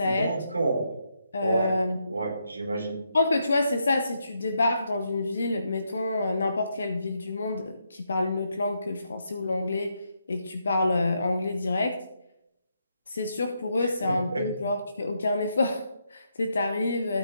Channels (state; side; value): inverted; both; correlation -0.80